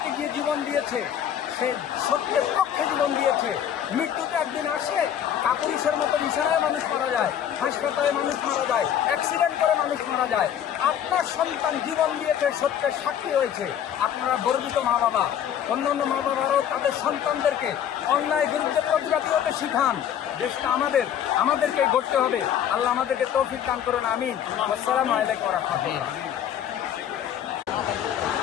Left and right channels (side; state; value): right; quieter; 9.7 dB